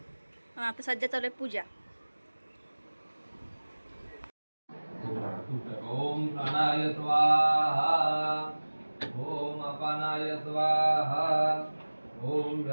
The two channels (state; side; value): inverted; both; correlation -1.00